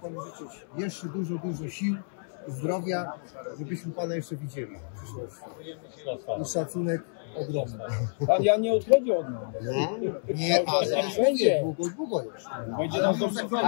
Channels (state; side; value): silent; right; 58 dB below the other